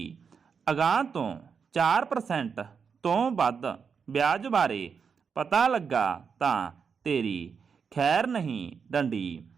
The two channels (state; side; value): quieter; left; 6.1 dB